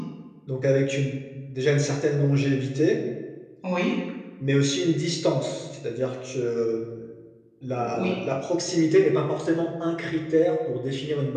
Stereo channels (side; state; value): both; identical; correlation 1.00